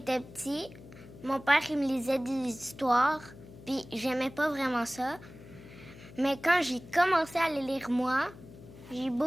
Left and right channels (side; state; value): left; noise; hum, 18 dB below the sound